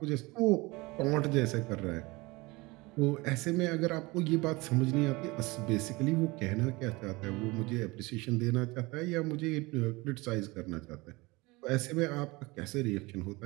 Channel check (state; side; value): quieter; left; 23.5 dB